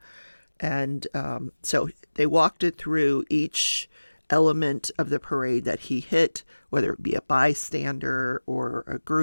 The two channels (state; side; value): inverted; both; correlation -1.00